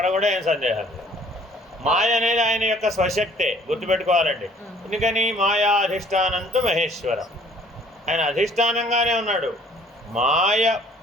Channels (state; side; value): normal; both; correlation 0.57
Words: కూడా ఏం సందేహం లేదు. మాయ అనేది ఆయన యొక్క స్వశక్తే, గుర్తుపెట్టుకోవాలండి. ఎందుకని? మాయా అధిష్టానంతో మహేశ్వరం. ఆయన అధిష్టానంగానే ఉన్నాడు. మాయ